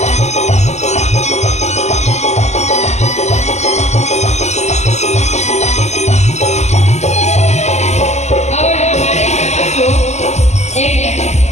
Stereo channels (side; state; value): right; late; 0.33 ms